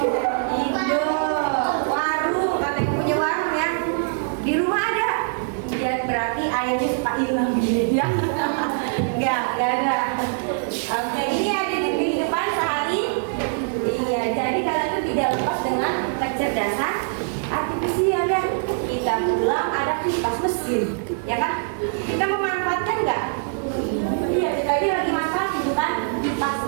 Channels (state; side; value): silent; left; 63 dB below the other